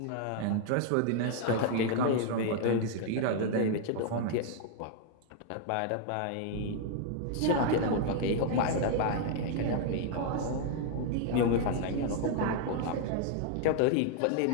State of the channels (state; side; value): different; both; correlation 0.00